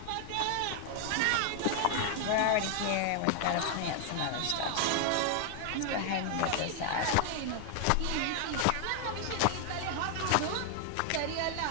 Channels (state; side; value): different; both; correlation 0.00